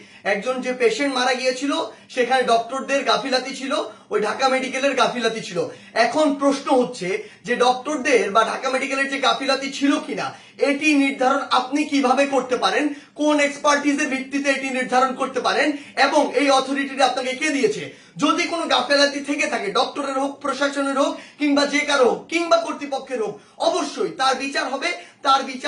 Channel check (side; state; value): both; identical; correlation 1.00